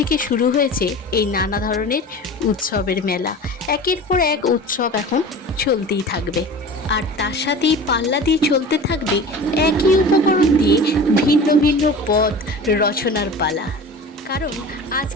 শুরু হয়েছে এই নানা ধরনের উৎসবের মেলা। একের পর এক উৎসব এখন চলতেই থাকবে, আর তার সাথেই পাল্লা দিয়ে চলতে থাকবে একই উপকরণ দিয়ে ভিন্ন ভিন্ন পদ রচনার পালা। কারণ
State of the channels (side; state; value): both; normal; correlation 0.37